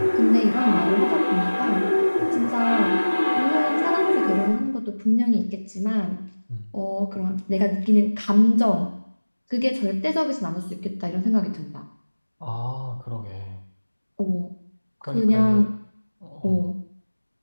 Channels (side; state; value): both; inverted; correlation -1.00